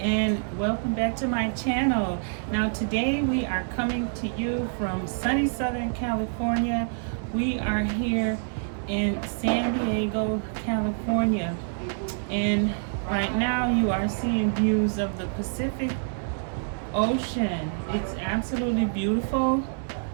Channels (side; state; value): left; silent; 60 dB below the other